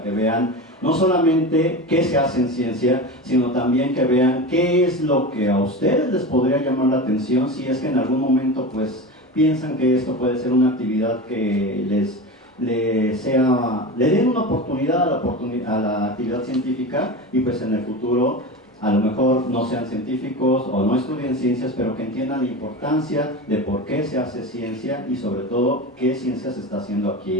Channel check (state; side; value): normal; both; correlation 0.26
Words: que vean no solamente qué se hace en ciencia, sino también que vean qué es lo que a ustedes les podría llamar la atención si es que en algún momento pues piensan que esto puede ser una actividad que le den una oportunidad a la actividad científica y pues en el futuro a lo mejor no sean científicos o no estudien ciencias, pero que entiendan la importancia de por qué se hace ciencia y sobre todo qué ciencia se está haciendo